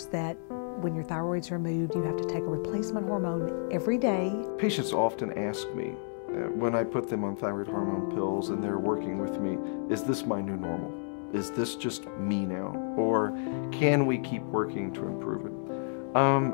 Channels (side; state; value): right; silent; 57 dB below the other